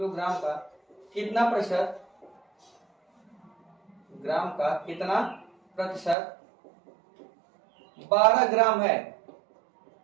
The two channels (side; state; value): left; drops out; at 6.2 s